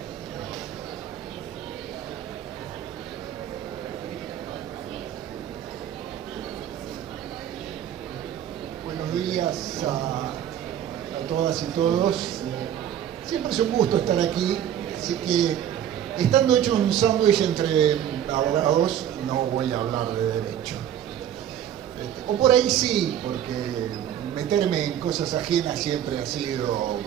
Buenos días a todas y todos. Siempre es un gusto estar aquí, así que estando hecho un sándwich entre abogados, no voy a hablar de derecho. O por ahí sí, porque meterme en cosas ajenas siempre ha sido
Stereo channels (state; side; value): quieter; left; 10.3 dB